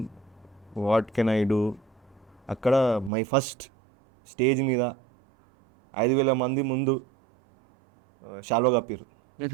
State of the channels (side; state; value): left; drops out; at 3.1 s